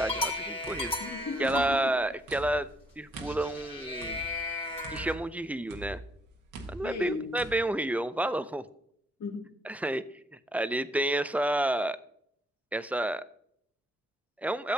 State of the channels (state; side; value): normal; both; correlation 0.70